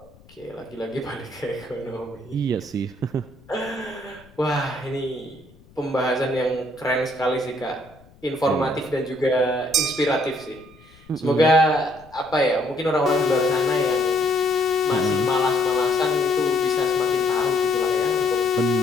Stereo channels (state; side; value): noise; left; rumble, 26 dB below the sound